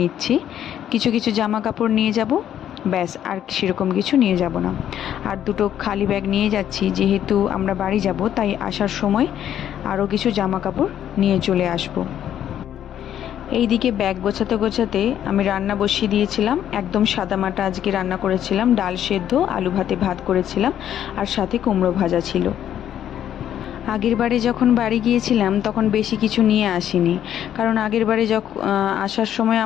কিছু কিছু জামা কাপড় নিয়ে যাব, ব্যাস, আর সেরকম কিছু নিয়ে যাব না। আর দুটো খালি ব্যাগ নিয়ে যাচ্ছি, যেহেতু আমরা বাড়ি যাব, তাই আসার সময় আরও কিছু জামা কাপড় নিয়ে চলে আসবো। এইদিকে ব্যাগ গোছাতে গোছাতে আমি রান্না বসিয়ে দিয়েছিলাম। একদম সাদামাটা আজকে রান্না করেছিলাম, ডাল সেদ্ধ, আলু ভাতে ভাত করেছিলাম, আর সাথে কুমড়ো ভাজা ছিল। আগের বারে যখন বাড়ি গিয়েছিলাম তখন বেশি কিছু নিয়ে আসিনি, কারণ আগের বারে যখন আসার সময়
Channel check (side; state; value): right; quieter; 10.5 dB